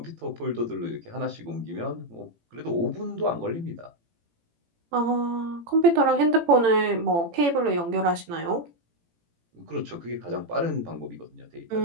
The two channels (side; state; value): left; late; 18 ms